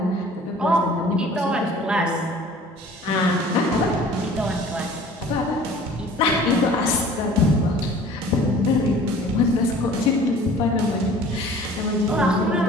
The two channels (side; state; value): both; normal; correlation 0.48